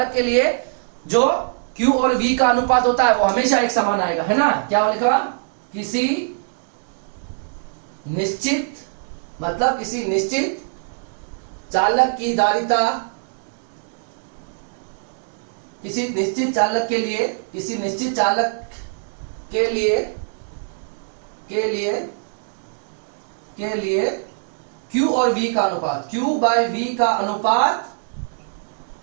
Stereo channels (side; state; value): left; silent; 64 dB below the other